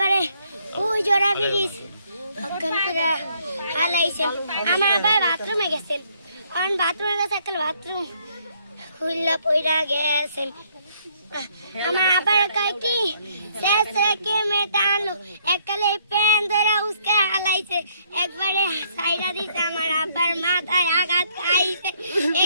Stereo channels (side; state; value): both; inverted; correlation -0.67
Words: ওই জোড়া ব্রিজ অজ্ঞান করে হালাইছে। আমার আব্বাই বাথরুমে গেছেন, কারণ বাথরুমে গেছে একটা বাথরুম খুললা পইরা গেছেন। আমার আবার কয় কি শেষ রেখে মেয়েটা আনলো, এককালে প্যান ধরে উসকে হালাইছে, একবারে সাইডা দিছে। আমার আব্বার মাথায় আঘাত খাইছে,